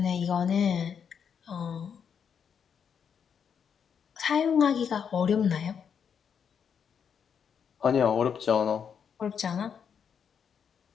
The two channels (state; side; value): quieter; right; 7.3 dB